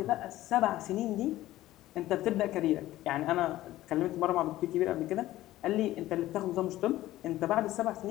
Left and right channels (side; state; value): right; quieter; 15.4 dB